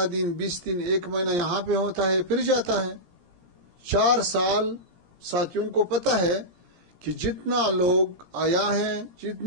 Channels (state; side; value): late; left; 17 ms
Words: دن 20 دن 1 مہینہ یہاں پہ ہوتا ہے، پھر جاتا ہے. 4 سال ساتھیوں کو پتہ ہے کہ جتنا لوگ آیا ہے،